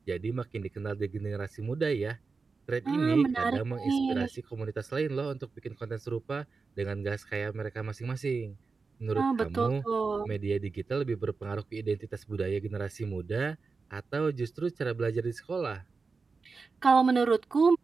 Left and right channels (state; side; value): quieter; left; 4.5 dB